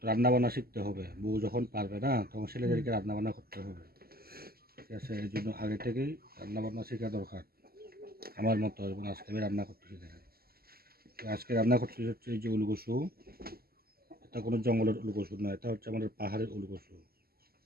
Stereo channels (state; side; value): late; left; 0.45 ms